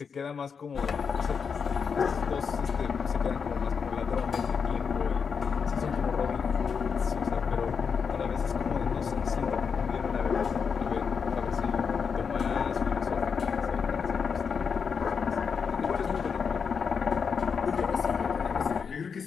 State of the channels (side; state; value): right; quieter; 6.1 dB